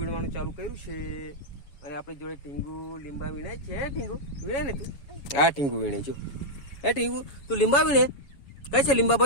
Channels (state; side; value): late; right; 7.2 ms